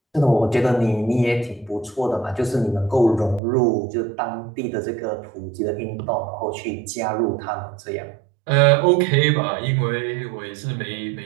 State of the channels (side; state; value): left; drops out; at 3.4 s